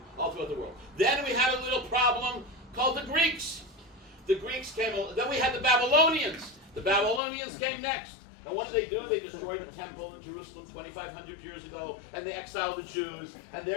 all throughout the world. Then we had a little problem called the Greeks. The Greeks came, then we had the Babylonians. The Babylonians came next. And what did they do? They destroyed the temple in Jerusalem 2,500 years ago, and they exiled the Jews, and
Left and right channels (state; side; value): drops out; right; at 7.2 s